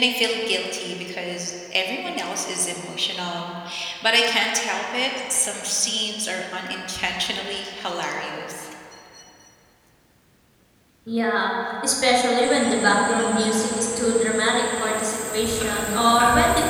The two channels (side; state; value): both; identical; correlation 1.00